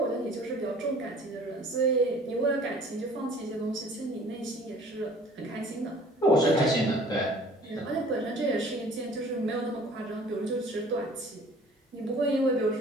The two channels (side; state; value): both; normal; correlation 0.50